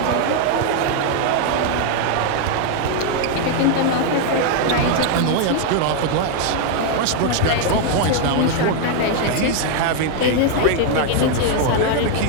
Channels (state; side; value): different; both; correlation 0.00